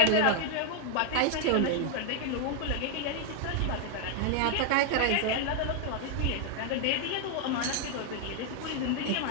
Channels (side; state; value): both; different; correlation 0.00